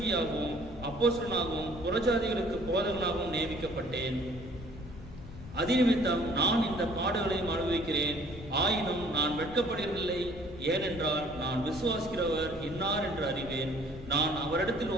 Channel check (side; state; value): left; noise; rumble, 14 dB below the sound